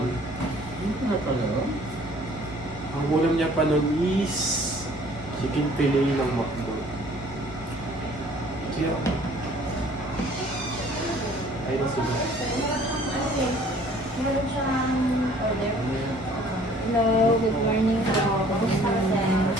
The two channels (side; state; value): both; normal; correlation 0.54